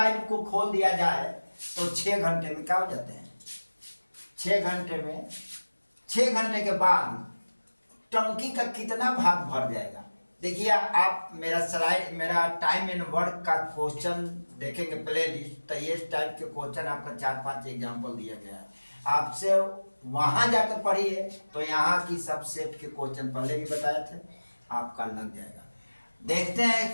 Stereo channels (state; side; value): inverted; both; correlation -1.00